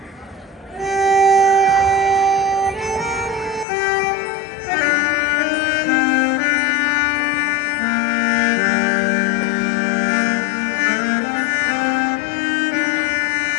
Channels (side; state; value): right; drops out; at 3.7 s